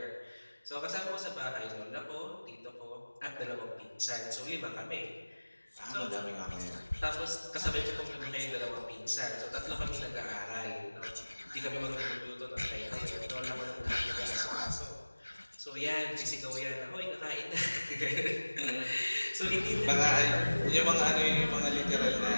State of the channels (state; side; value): inverted; both; correlation -1.00